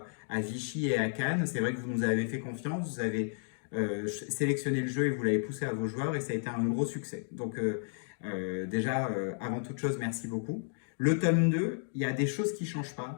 Vichy et à Cannes. C'est vrai que vous nous avez fait confiance, vous avez sélectionné le jeu et vous l'avez poussé à vos joueurs et ça a été un gros succès. Avant toute chose, merci beaucoup. Le tome 2, il y a des choses qui ne changent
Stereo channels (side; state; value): right; silent; digital silence